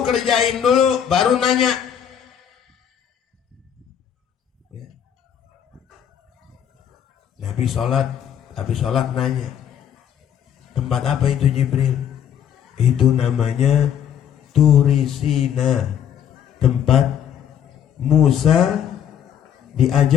kerjain dulu, baru nanya. Ya. Nabi sholat, habis sholat nanya, tempat apa itu Jibril? Itu namanya Turisina, tempat Musa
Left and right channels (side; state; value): right; quieter; 9.2 dB